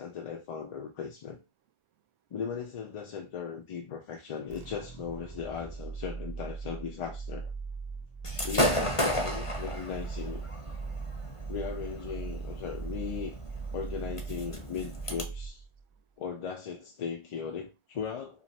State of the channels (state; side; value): late; right; 1.5 ms